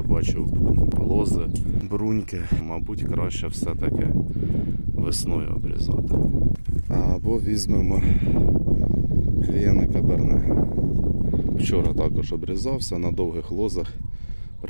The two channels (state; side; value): inverted; both; correlation -1.00